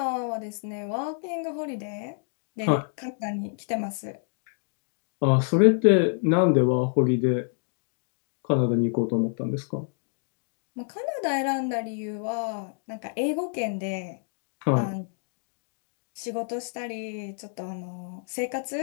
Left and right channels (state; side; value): silent; right; 59 dB below the other